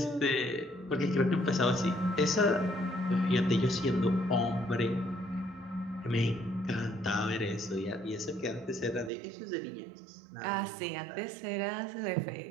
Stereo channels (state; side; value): drops out; left; at 9.1 s